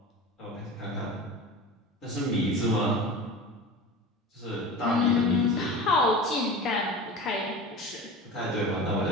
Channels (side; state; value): both; normal; correlation 0.32